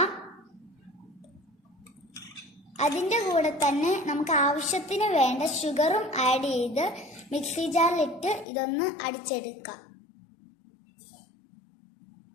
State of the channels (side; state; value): right; drops out; at 8.5 s